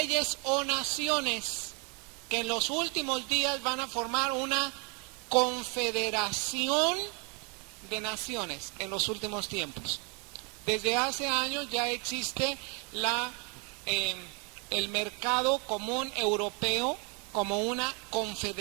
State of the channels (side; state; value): left; quieter; 34.1 dB